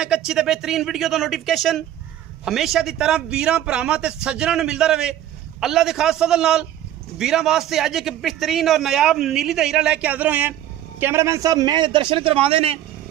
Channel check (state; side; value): quieter; left; 12.1 dB